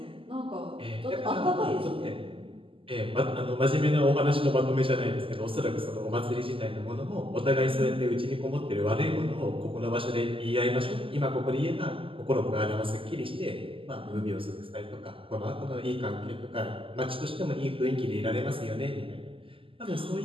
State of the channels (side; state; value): left; late; 0.26 ms